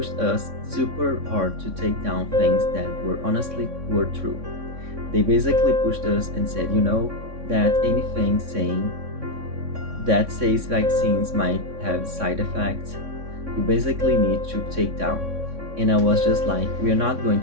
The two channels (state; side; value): late; left; 3.6 ms